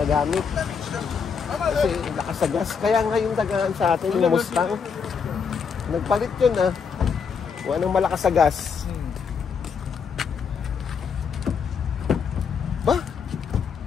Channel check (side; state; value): right; quieter; 6.2 dB